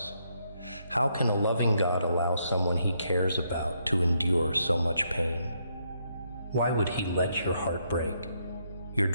How can a loving God allow someone He cares about to endure so much pain? Why would He let your heart break, your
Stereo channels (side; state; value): both; inverted; correlation -0.76